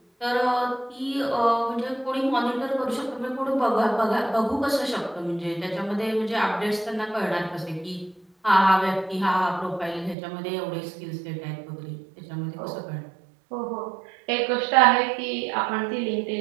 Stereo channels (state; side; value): drops out; left; at 10.2 s